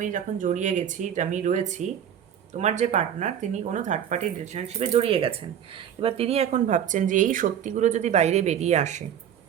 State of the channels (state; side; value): quieter; left; 9.3 dB